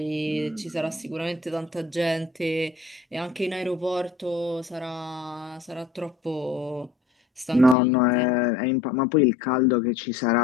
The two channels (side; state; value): right; drops out; at 7.8 s